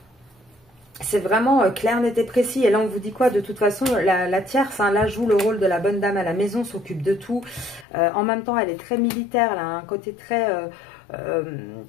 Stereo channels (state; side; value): drops out; right; at 7.9 s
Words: c'est vraiment clair, net et précis. Et là, on vous dit quoi? De toute façon, la tierce, hein, là, joue le rôle de la bonne dame à la maison, s'occupe de tout. En même temps, elle est très militaire, elle a un côté très,